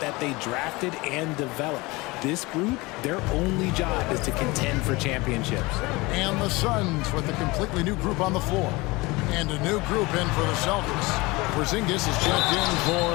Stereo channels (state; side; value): quieter; right; 23.1 dB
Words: they drafted and developed. This group, their only job is to contend for championships. And the Suns with a completely new group on the floor. And a new group in for the Celtics. Porzingis is checked in